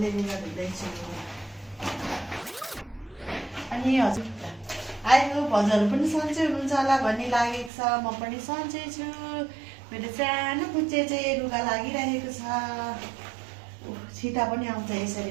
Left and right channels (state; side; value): drops out; left; at 7.7 s